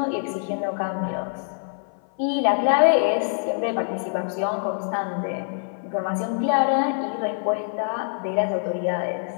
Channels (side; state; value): right; silent; 57 dB below the other